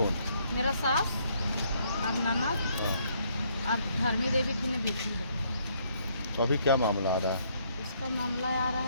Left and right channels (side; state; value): both; inverted; correlation -0.69